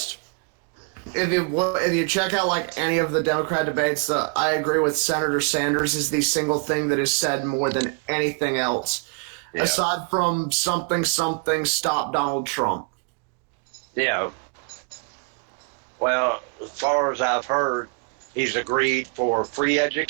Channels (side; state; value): left; quieter; 35.4 dB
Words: If you check out like any of the Democrat debates, I agree with Senator Sanders is the single thing that is said more than anything else, aside from something stop Donald Trump. Yeah. Well, as far as I've heard, he's agreed for free